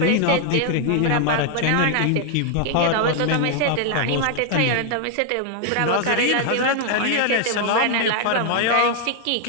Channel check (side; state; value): both; different; correlation 0.00